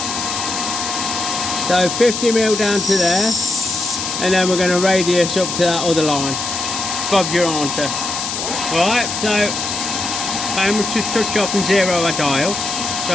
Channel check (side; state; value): left; noise; hiss, 4 dB below the sound